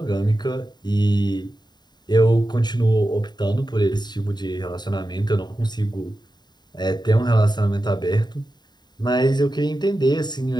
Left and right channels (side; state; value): right; late; 0.21 ms